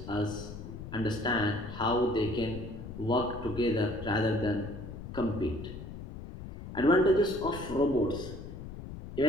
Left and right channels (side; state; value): left; noise; rumble, 10 dB below the sound